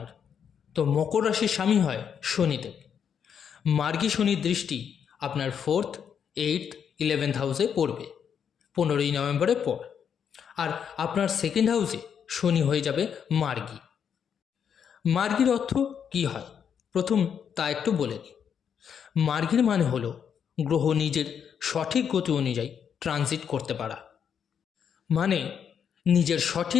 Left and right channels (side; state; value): right; quieter; 7.7 dB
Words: তো মকর রাশির স্বামী হয় শনিদেব। মার্গী শনির দৃষ্টি আপনার 4th, 8th, 11th হাউসে পড়বে 15ই নভেম্বরের পর। আর আপনার 2nd হাউসে শনি হয়ে যাবে মার্গী। মার্গীর অর্থ কী হয় প্রথম তা একটু বলে নিই। মার্গীর মানে হলো গ্রহ নিজের সঠিক গতি অনুযায়ী ট্রানজিট করতে পারা, মানে নিজের